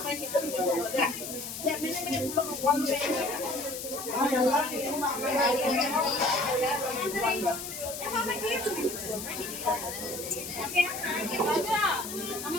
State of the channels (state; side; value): noise; left; hiss, 8 dB below the sound